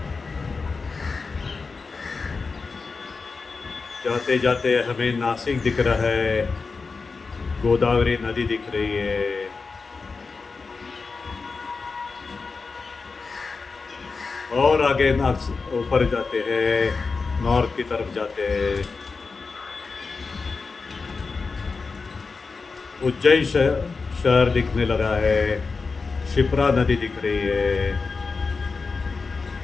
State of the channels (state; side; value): quieter; right; 4.4 dB